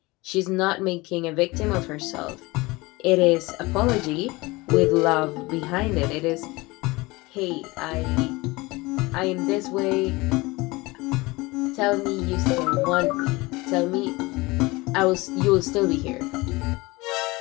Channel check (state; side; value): quieter; right; 22.7 dB